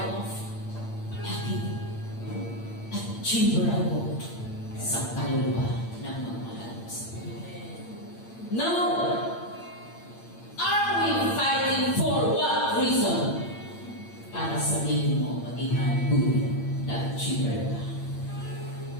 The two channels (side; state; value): right; late; 8.8 ms